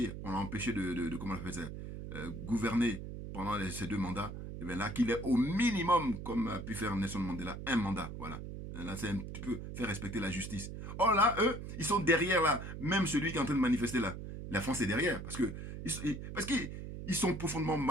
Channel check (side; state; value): right; noise; hum, 8 dB below the sound